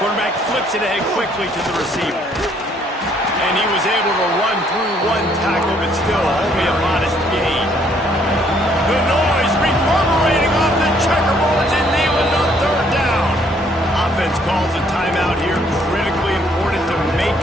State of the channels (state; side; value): normal; both; correlation 0.65